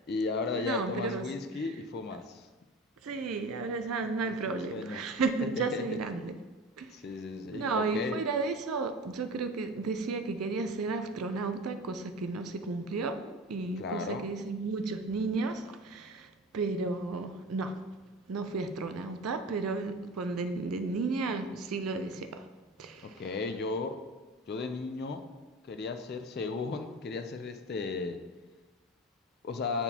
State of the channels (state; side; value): normal; both; correlation 0.33